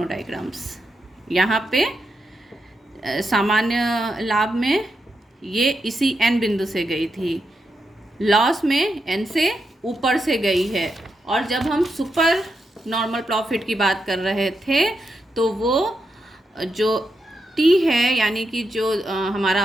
डायग्राम्स। यहाँ पे सामान्य लाभ में ये इसी एन बिंदु से गई थी, लॉस में एन से ऊपर से गई है। और जब हम सुपर नॉर्मल प्रॉफिट की बात कर रहे थे तो वो जो टी है, यानी कि जो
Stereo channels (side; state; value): both; normal; correlation 0.85